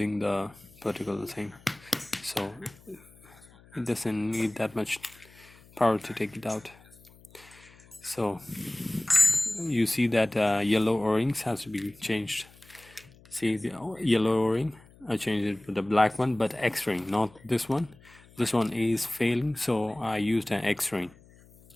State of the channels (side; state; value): left; noise; hum, 25 dB below the sound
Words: the particular thing, so it doesn't need that much power to take it out. So you see that yellow O-rings has to be changed. See the yellow O-ring, I changed it with the black one, but X-ring, not this one. This one is failing, so I used an X-ring.